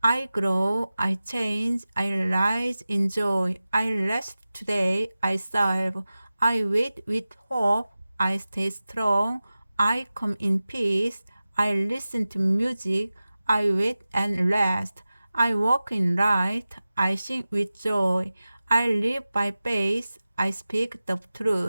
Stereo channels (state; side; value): inverted; both; correlation -0.95